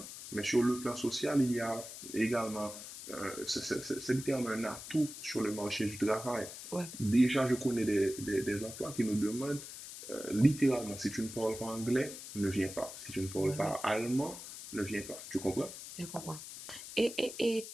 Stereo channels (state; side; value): noise; left; hiss, 11 dB below the sound